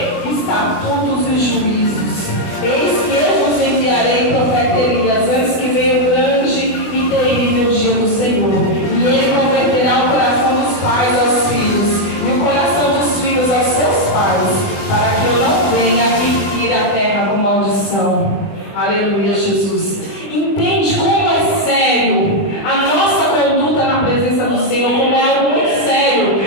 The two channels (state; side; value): late; right; 20 ms